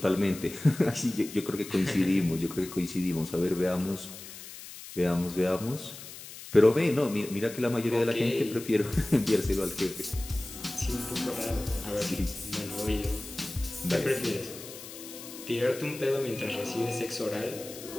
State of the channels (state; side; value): noise; left; hiss, 14 dB below the sound